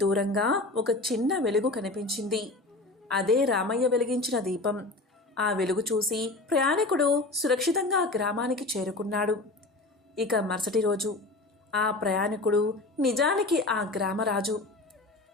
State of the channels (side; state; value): right; quieter; 3.1 dB